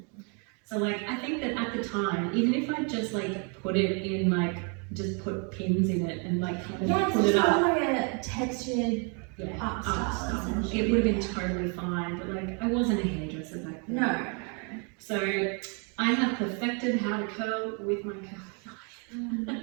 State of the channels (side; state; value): left; quieter; 36.5 dB